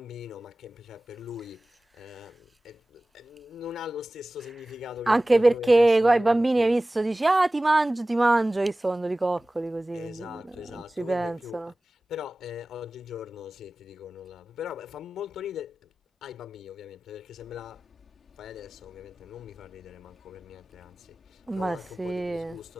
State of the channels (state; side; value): normal; both; correlation 0.97